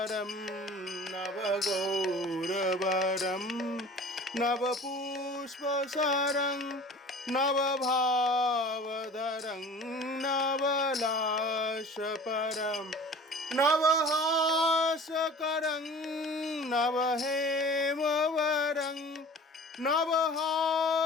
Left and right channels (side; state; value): both; normal; correlation 0.43